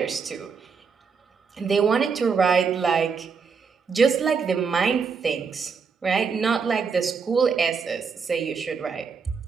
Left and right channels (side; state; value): left; quieter; 5.6 dB